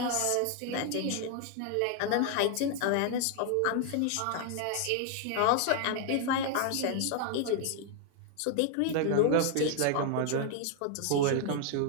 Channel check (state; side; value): different; both; correlation 0.00